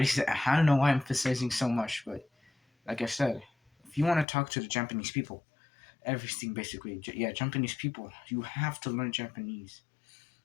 said, I don't know why I'm emphasizing so much, but like I said, if you want to talk to the Japanese people, everything basically, yeah, Japanese people, you have to learn Japanese.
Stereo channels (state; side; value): drops out; right; at 4.2 s